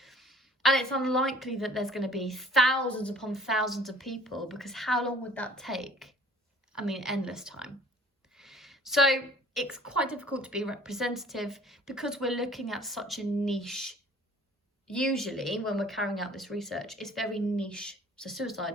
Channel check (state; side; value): normal; both; correlation 0.51